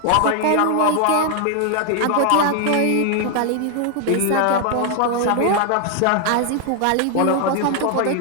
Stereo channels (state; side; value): different; both; correlation 0.00